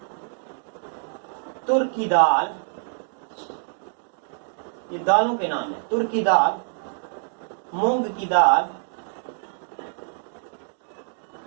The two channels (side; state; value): left; silent; digital silence